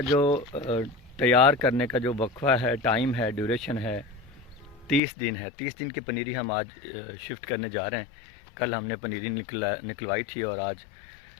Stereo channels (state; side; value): drops out; right; at 5.0 s